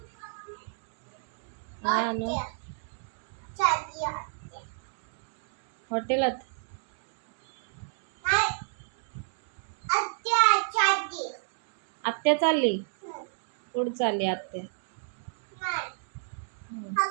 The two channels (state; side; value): silent; left; digital silence